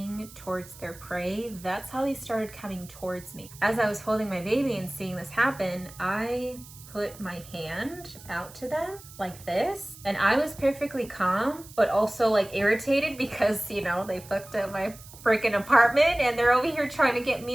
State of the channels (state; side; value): noise; right; hiss, 19 dB below the sound